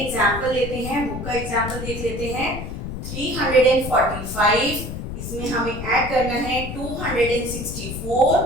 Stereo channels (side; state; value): left; noise; rumble, 7 dB below the sound